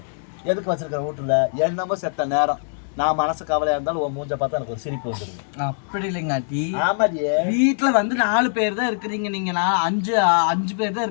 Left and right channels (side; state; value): right; silent; digital silence